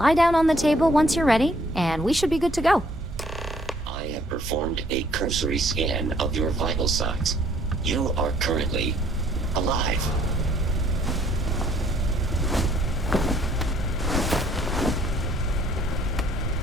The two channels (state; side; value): normal; both; correlation 0.62